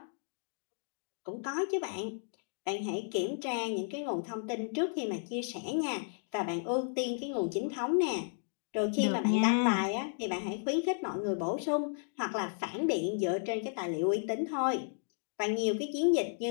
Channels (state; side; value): silent; right; digital silence